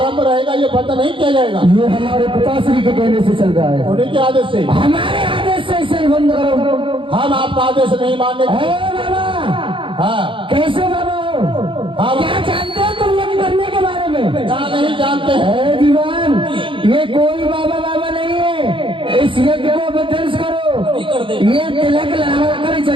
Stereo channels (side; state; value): left; late; 0.25 ms